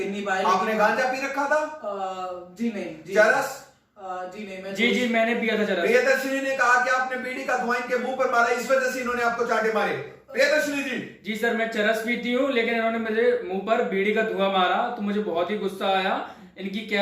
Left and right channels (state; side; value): identical; both; correlation 1.00